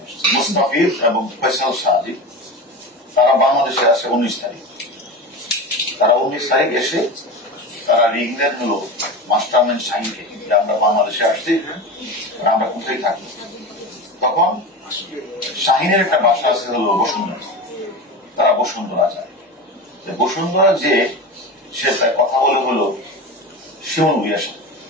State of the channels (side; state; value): both; normal; correlation 0.26